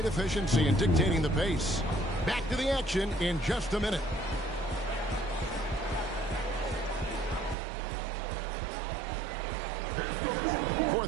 efficiency and dictating the pace. Back to the action in just a minute.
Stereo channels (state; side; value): drops out; left; at 7.6 s